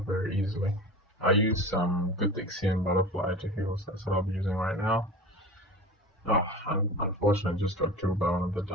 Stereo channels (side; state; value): both; normal; correlation 0.34